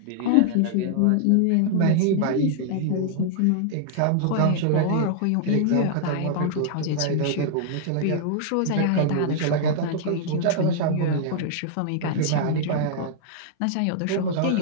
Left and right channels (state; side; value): different; both; correlation -0.01